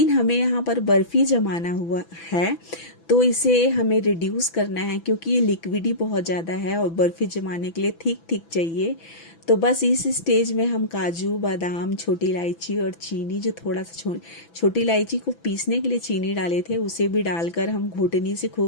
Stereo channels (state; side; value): late; right; 6.0 ms